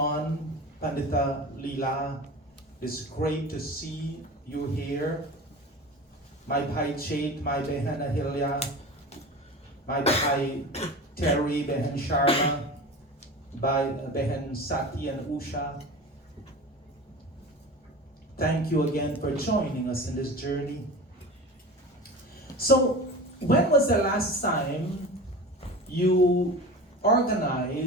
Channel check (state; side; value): normal; both; correlation 0.33